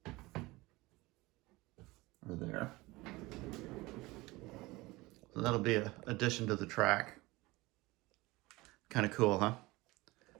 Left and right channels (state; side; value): quieter; left; 21.2 dB